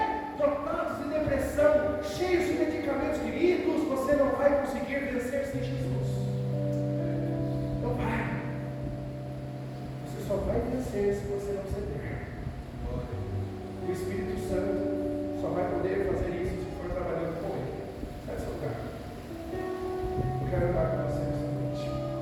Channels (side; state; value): both; identical; correlation 1.00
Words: dotados de depressão, cheios de medicamentos. Queridos, você não vai conseguir vencer sem Jesus. Não vai. Você só vai vencer se você não ceder. O Espírito Santo só vai poder fazer isso se for trabalhando com Ele. Sai do seu lugar. Eu quero orar com você.